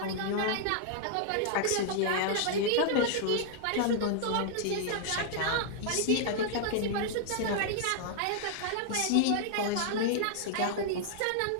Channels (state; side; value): different; both; correlation -0.01